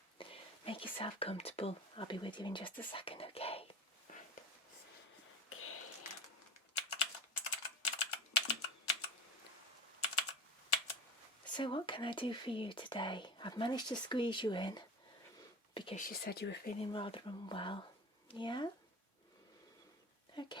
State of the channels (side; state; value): both; normal; correlation 0.32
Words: Make yourself comfortable. I'll be with you in just a second, okay? So what can I do for you today? I've managed to squeeze you in because you said you were feeling rather unwell. Yeah?